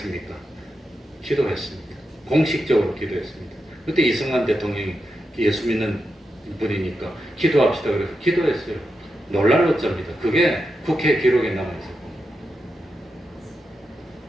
기도했습니다. 공식적으로 기도했습니다. 그때 이승만 대통령이 예수 믿는 분이니까 기도합시다 그래서 기도했어요. 놀랄 어쩝니다. 그게 국회 기록에 남아있어요.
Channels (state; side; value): normal; both; correlation 0.87